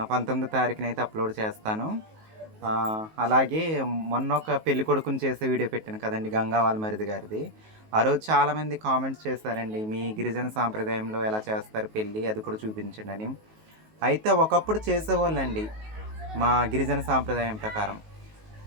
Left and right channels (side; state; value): left; late; 19 ms